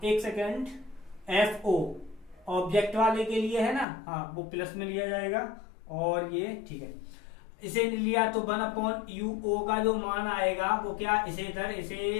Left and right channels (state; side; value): drops out; right; at 3.9 s